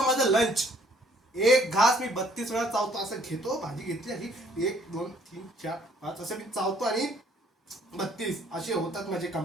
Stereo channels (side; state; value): both; normal; correlation 0.61